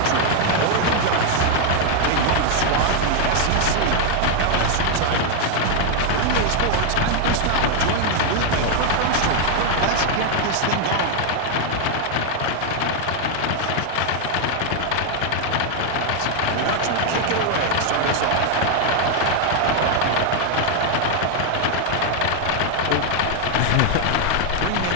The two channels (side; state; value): both; different; correlation 0.00